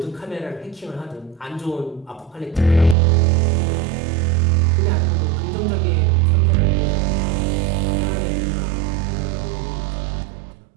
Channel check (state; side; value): drops out; left; at 3.0 s